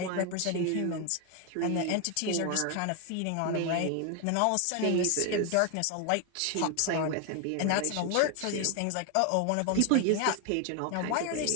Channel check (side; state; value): both; different; correlation 0.01